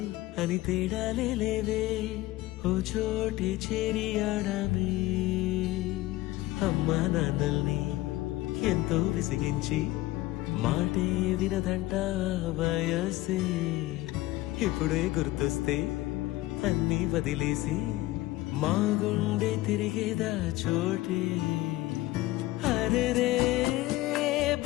అని తేడాలే లేవే ఓ చోటే చేరి ఆడామే అమ్మా నాన్నల్ని ఎంతో విసిగించి మాటే వినదంట వయసే ఇప్పుడే గుర్తొస్తే అన్నీ వదిలేసి మా గుండె తిరిగేదా చోటే అరెరే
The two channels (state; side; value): quieter; right; 17.6 dB